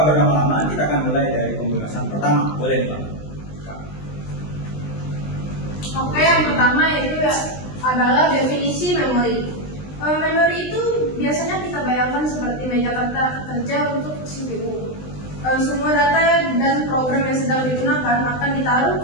berlama-lama kita akan mulai dari pembahasan pertama. Boleh nih Pak? Oke, yang pertama itu adalah definisi memori. Memori itu biasanya kita bayangkan seperti meja kerja untuk CPU. Semua data dan program yang sedang digunakan akan ditaruh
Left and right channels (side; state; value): right; late; 20 ms